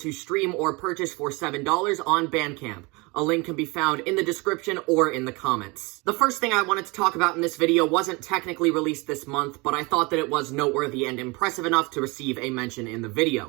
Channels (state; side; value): quieter; left; 26.5 dB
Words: stream or purchase for $7 on Bandcamp. A link can be found in the description or in the comments. The first thing I wanted to talk about in this video wasn't technically released this month, but I thought that it was noteworthy and impressive enough to receive a mention in the